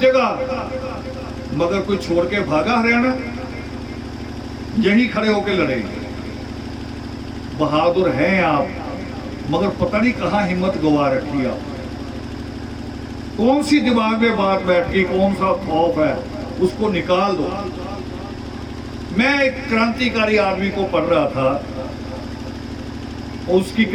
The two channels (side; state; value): both; identical; correlation 1.00